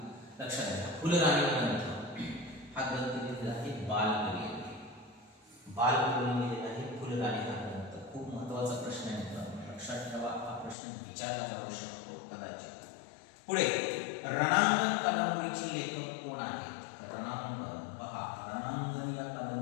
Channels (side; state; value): right; drops out; at 10.8 s